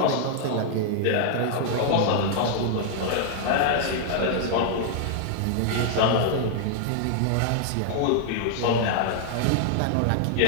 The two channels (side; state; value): both; different; correlation -0.01